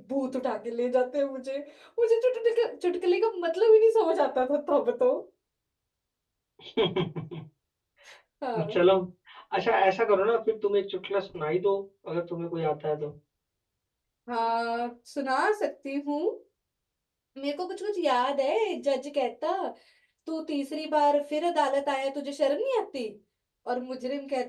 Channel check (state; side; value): identical; both; correlation 1.00